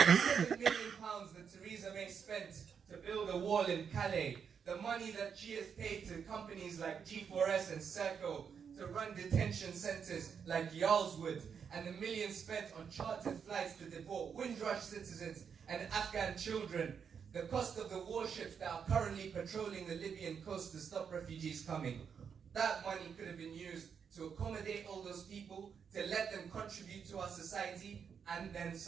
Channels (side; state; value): left; quieter; 6.9 dB